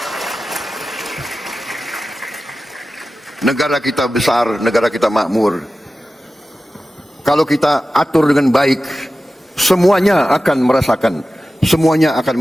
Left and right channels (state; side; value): normal; both; correlation 0.94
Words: Negara kita besar, negara kita makmur. Kalau kita atur dengan baik, semuanya akan merasakan, semuanya akan